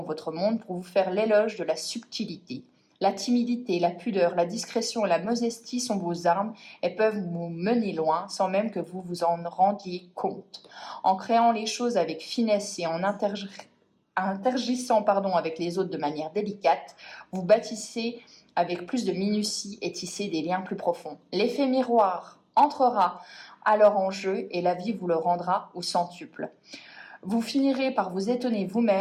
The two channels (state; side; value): identical; both; correlation 1.00